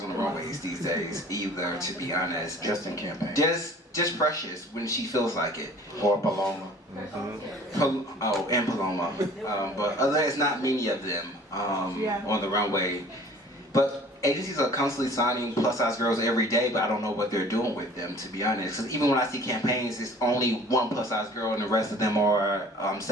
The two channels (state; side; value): normal; both; correlation 0.49